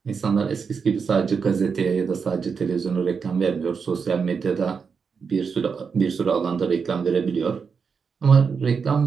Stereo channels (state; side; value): quieter; left; 5.8 dB